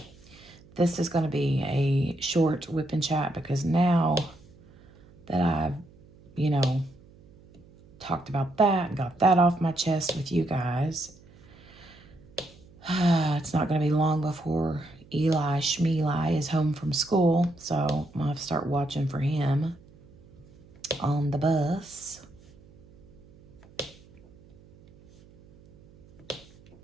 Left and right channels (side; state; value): right; noise; hum, 25 dB below the sound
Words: this is going to be a short whip and chat, because now that I've, talked about that and got that off my chest with you guys, it's not going to be long before Eli Schmeeli is home from school, so I'm going to have to start watching for him on the bus.